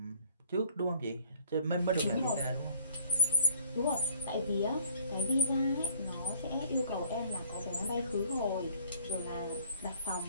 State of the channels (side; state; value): both; inverted; correlation -0.61